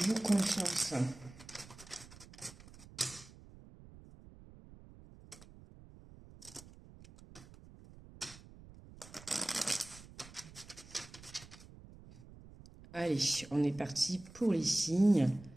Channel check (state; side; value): noise; right; rumble, 19 dB below the sound